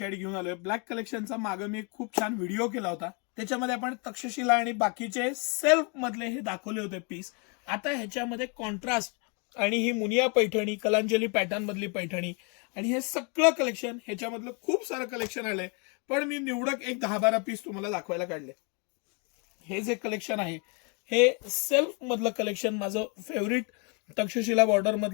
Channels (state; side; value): quieter; right; 34.5 dB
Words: घेऊन आलोय। ब्लॅक कलेक्शनचा मागे मी एक खूप छान व्हिडिओ केला होता, त्याच्यामध्ये आपण तक्षशिला आणि बाकीचे सेल्फ मधले हे दाखवले होते पीस। आता ह्याच्यामध्ये कॉन्ट्रास्ट आणि ही मुनिया पैठणी, कलांजली पॅटर्न मधली पैठणी आणि हे सगळं कलेक्शन, ह्याच्यामधलं खूप सारं कलेक्शन आलंय, पण मी निवडक एक 10-12 पीस तुम्हाला दाखवायला काढले। हे जे कलेक्शन आहे हे सेल्फ मधलं कलेक्शन, माझं फेवरेट तक्षशिला बॉर्डर